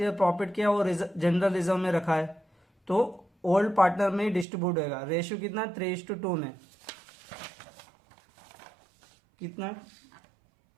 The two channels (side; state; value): left; drops out; at 4.5 s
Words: प्रॉफिट किया वो जनरल रिजर्व में रखा है, तो ओल्ड पार्टनर में ही डिस्ट्रीब्यूट होगा। रेशियो कितना? 3:2 में। कितना?